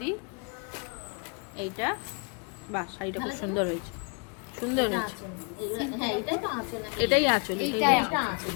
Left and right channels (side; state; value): right; quieter; 34.6 dB